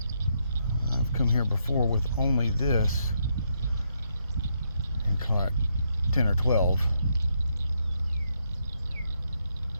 I've come here before with only this and caught 10 or 12.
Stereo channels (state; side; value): inverted; both; correlation -0.78